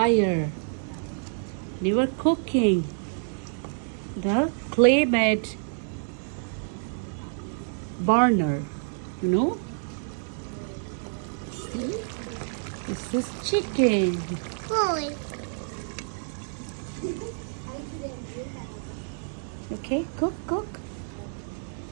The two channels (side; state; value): left; silent; digital silence